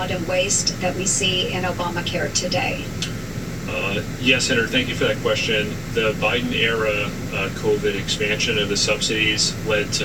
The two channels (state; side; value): identical; both; correlation 1.00